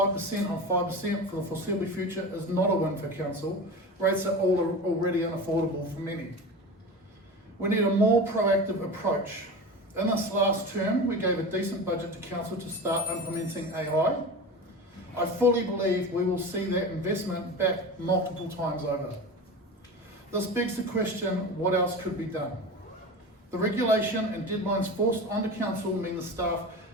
on 5% for the foreseeable future is not a win for council. Rates are already unaffordable for many. We need a more proactive approach. In this last term, we gave a decent budget to council to start implementing AI. I fully believe we will see that investment back multiple times over. This begs the question, what else could be done? The regulation and deadlines forced onto council mean the staff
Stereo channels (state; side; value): normal; both; correlation 0.30